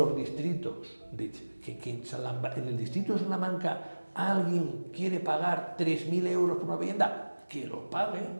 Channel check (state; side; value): inverted; both; correlation -1.00